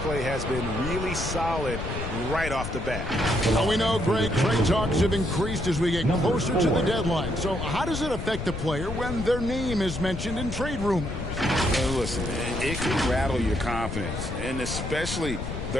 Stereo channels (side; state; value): left; noise; rumble, 5 dB below the sound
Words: has been really solid right off the bat. Now we know, Greg, trade talks have increased as we get closer to the deadline. So how does it affect the player when their name is mentioned in trade rumors? Listen, it can rattle your confidence, and especially